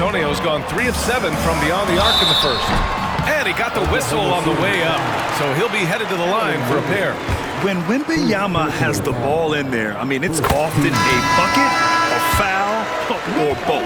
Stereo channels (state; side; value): identical; both; correlation 1.00